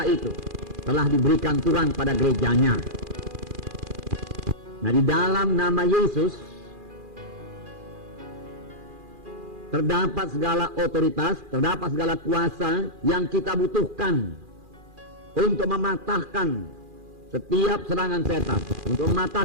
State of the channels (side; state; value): left; late; 2.4 ms